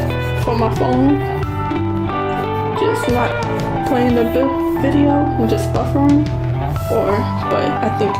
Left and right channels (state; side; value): identical; both; correlation 1.00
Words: for my phone just not playing the video and just buffering, or, but I think